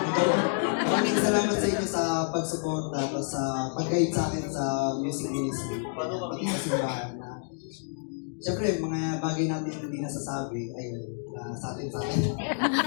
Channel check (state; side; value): silent; right; digital silence